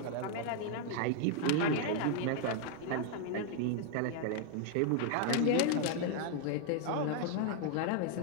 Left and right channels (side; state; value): both; different; correlation 0.00